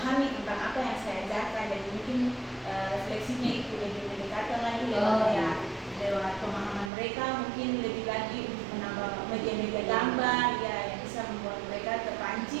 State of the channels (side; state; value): left; drops out; at 6.9 s